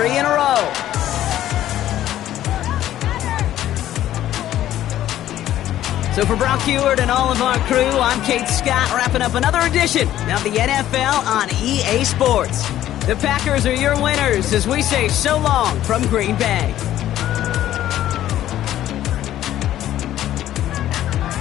in a row. So for Brock Heward and all of our crew, I'm Kate Scott, wrapping up another edition of the NFL on EA Sports. The Packers are your winners as we say so long from Green Bay.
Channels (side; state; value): right; quieter; 12.7 dB